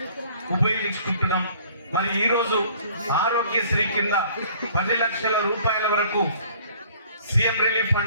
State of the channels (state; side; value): inverted; both; correlation -0.54